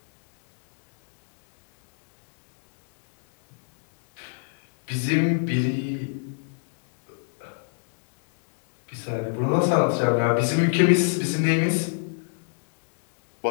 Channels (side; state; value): right; silent; digital silence